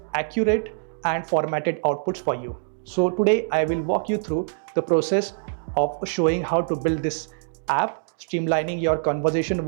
accurate and formatted outputs for you. So today I will walk you through the process of showing how to build this app, streamlining your conversation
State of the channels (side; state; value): left; silent; digital silence